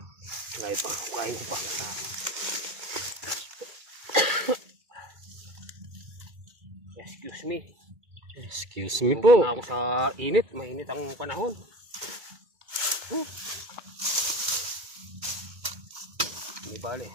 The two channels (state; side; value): late; left; 2.3 ms